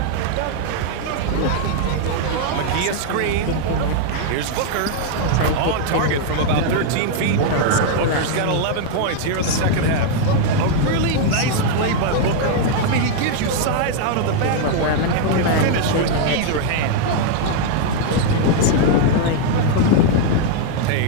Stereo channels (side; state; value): both; different; correlation 0.00